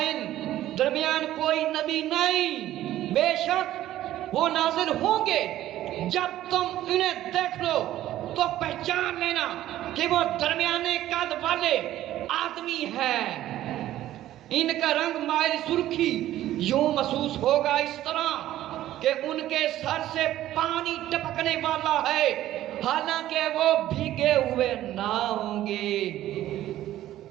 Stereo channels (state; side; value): quieter; left; 13.6 dB